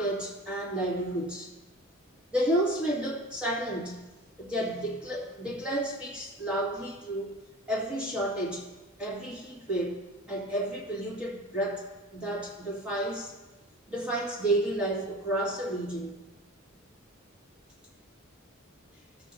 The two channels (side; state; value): both; normal; correlation 0.37